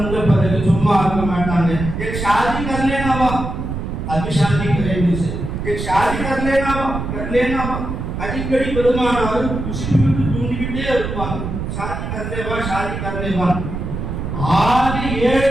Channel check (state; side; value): noise; right; rumble, 5 dB below the sound